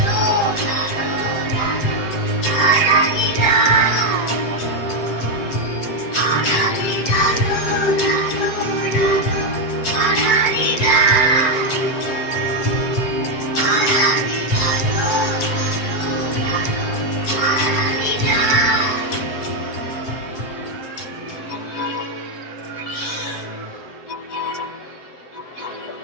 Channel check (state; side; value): late; right; 7.9 ms